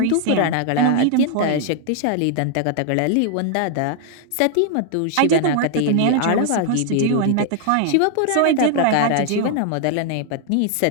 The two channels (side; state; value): both; different; correlation 0.00